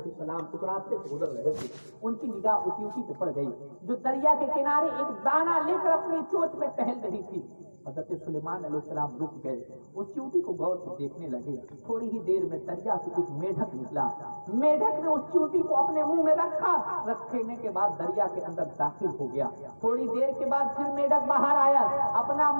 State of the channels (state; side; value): inverted; both; correlation -1.00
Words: السلام اس راستے سے گزر رہے تھے, ان کی نگاہ اس چیونٹی پہ پڑ گئی جو دریا کے کنارے ایک دانہ لے کر اپنی چوچ میں ٹہل رہی تھی. حضرت سلیمان علیہ السلام رک گئے, اس چیونٹی کو غور سے دیکھنے لگے. تھوڑی ہی دیر میں دریا سے ایک میڈک نکلا. میڈک نے اس چیونٹی کو اپنے منہ میں رکھا, رکھنے کے بعد دریا کے اندر داخل ہو گیا. تھوڑی دیر کے بعد پھر میڈک باہر آیا, اپنا